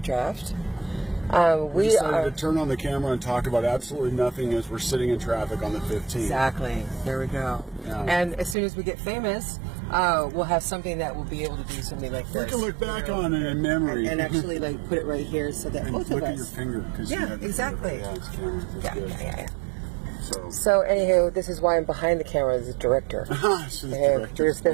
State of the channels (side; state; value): left; drops out; at 8.6 s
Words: draft, we decided to turn on the camera and talk about absolutely nothing as we're sitting in traffic on the 15th. Exactly. There we go. Yeah. And as soon as we get famous, we'll have something that will be able to do something like this. We can look back on it in memory. And actually like put it right here so that and both look of us. at your finger. Yeah, exactly. Yeah, it's camera. That's Yeah, good. yeah. So anywho, this is why I'm behind the camera as a director. So there's